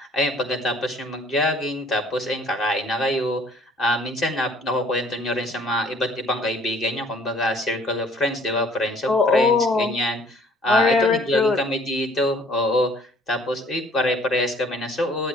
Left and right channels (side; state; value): both; normal; correlation 0.57